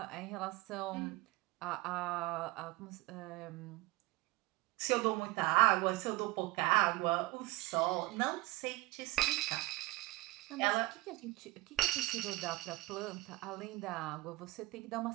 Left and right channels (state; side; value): quieter; left; 20.2 dB